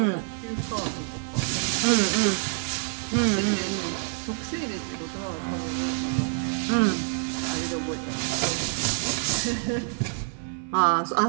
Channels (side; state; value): left; silent; 56 dB below the other